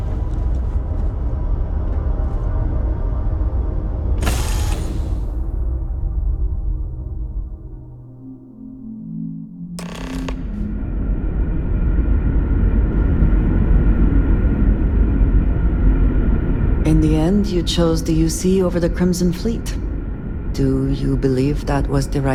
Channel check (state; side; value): identical; both; correlation 1.00